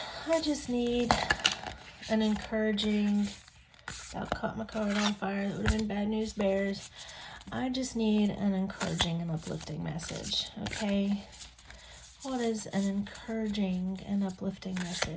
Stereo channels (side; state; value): both; identical; correlation 1.00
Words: I just need an encouraging, I caught my card on fire. That would have been bad news bears. I just need an encouraging and uplifting message. Okay. What is an encouraging and uplifting